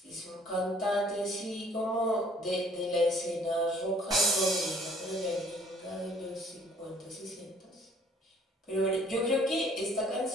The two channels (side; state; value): both; normal; correlation 0.58